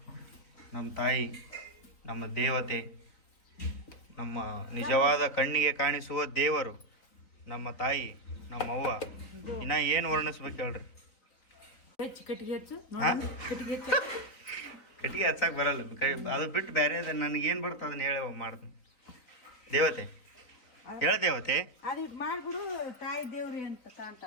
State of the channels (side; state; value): right; late; 3.9 ms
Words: ನಮ್ಮ ತಾಯಿ, ನಮ್ಮ ದೇವತೆ, ನಮ್ಮ ನಿಜವಾದ ಕಣ್ಣಿಗೆ ಕಾಣಿಸುವ ದೇವರು ನಮ್ಮ ತಾಯಿ, ನಮ್ಮ ಅವ್ವ. ಇನ್ನ ಏನು ವರ್ಣಿಸ್ಬೇಕು ಹೇಳ್ರಿ? ಕಟ್ಟಿಗೆ ಹಚ್ಚಕ್ಕೆ ಬರಲ್ಲ. ಅದು ಬಿಟ್ಟು ಬೇರೆ ನನಗೇನು ಬರ್ತದೆ ಅದನ್ನ ಹೇಳಿ ಮಾಡ್ತೀನಿ. ದೇವತೆ ಹೇಳ್ದೇವತೆ ಅದಿಟ್ ಮಾಡ್ಬಿಡು ತಾಯಿ ದೇವ್ರಿ ಅಂತ